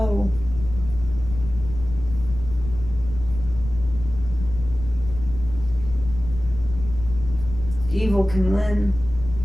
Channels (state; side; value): noise; left; rumble, 10 dB below the sound